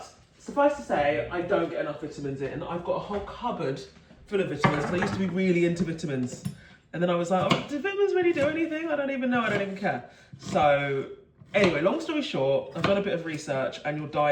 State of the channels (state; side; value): identical; both; correlation 1.00